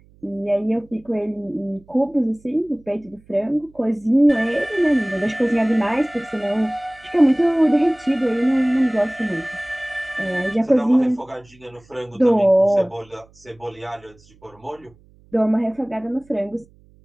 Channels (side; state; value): right; noise; hum, 29 dB below the sound